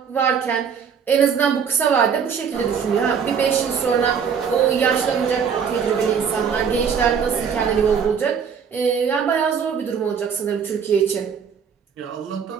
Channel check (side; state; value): left; quieter; 6.9 dB